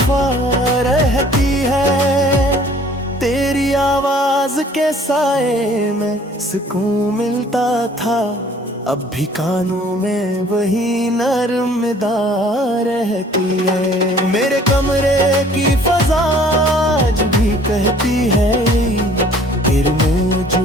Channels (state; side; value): normal; both; correlation 0.55